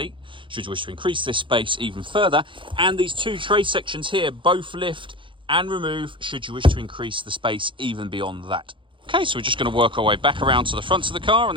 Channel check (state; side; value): late; left; 0.24 ms